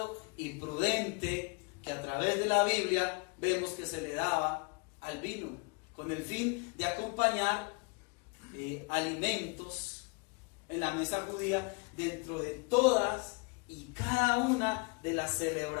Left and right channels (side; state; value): right; quieter; 31.3 dB